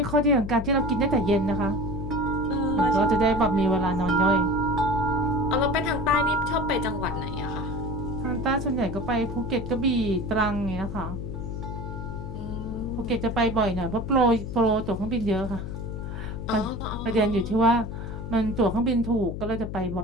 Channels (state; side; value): noise; left; hum, 6 dB below the sound